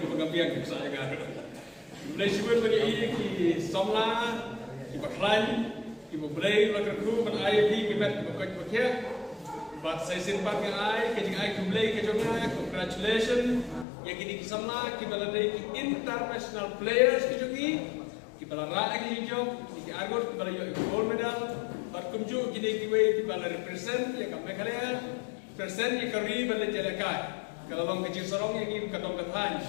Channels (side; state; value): right; drops out; at 13.9 s